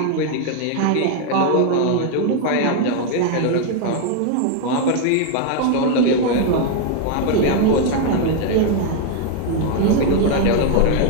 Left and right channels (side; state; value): both; different; correlation 0.01